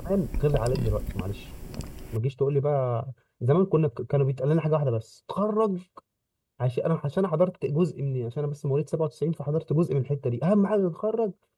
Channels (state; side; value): identical; both; correlation 1.00